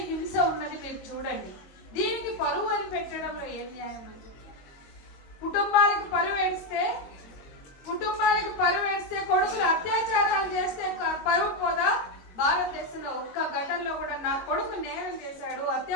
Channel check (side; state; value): right; late; 22 ms